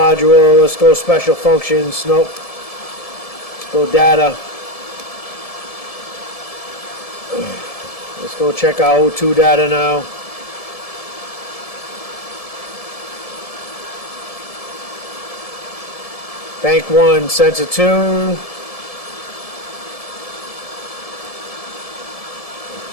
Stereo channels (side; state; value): right; late; 1.7 ms